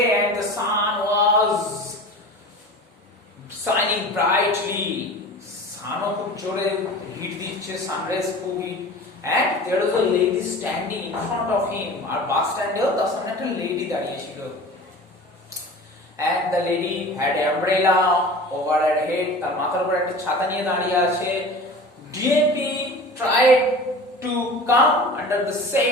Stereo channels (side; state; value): both; normal; correlation 0.37